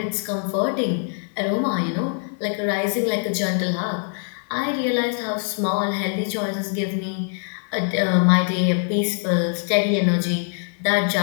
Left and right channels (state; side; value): silent; right; 58 dB below the other